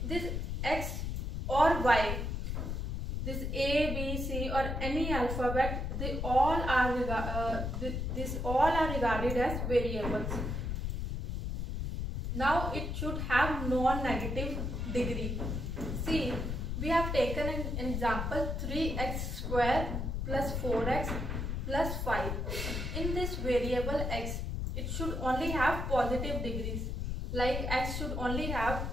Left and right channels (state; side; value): noise; left; rumble, 2 dB below the sound